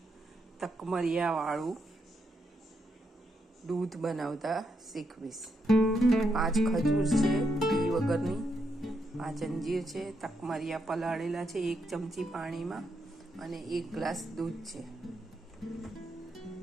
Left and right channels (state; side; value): normal; both; correlation 0.80